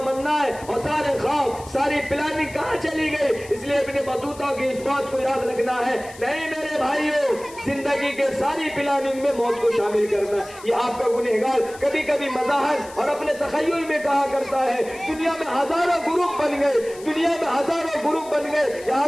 اور سارے خواب, ساری پلاننگ کہاں چلی گئی. اس لیے ابن بطوطہ کی اس بات کو یاد رکھنا ہے, نہیں میرے بھائیوں, زندگی کے ساری پلاننگ میں موت کو شامل کرنا. یہ آپ کا گنہگار کبھی کبھی مظاہر اور اپنے تخیل میں کہا کرتا ہے دنیا میں ہزاروں گروپ بن گئے, دنیا میں ہزاروں گروپ بن گئے. یہاں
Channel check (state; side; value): noise; left; hiss, 20 dB below the sound